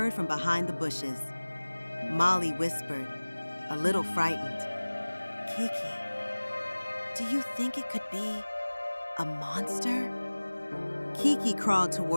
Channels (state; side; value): inverted; both; correlation -1.00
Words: from behind the bushes. Molly whispered, a little frightened, "Kiki, do you think it could be a monster?" Kiki crawled